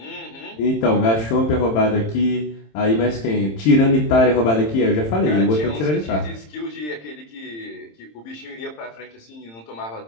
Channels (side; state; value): right; late; 27 ms